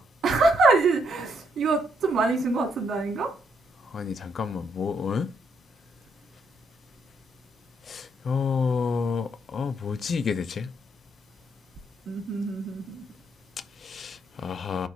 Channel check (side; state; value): both; normal; correlation 0.73